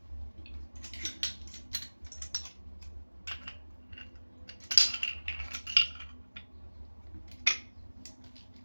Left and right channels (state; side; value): inverted; both; correlation -1.00